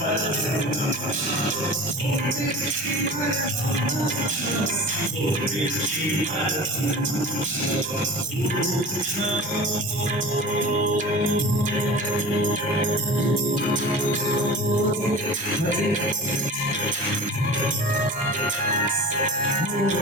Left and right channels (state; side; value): normal; both; correlation 0.36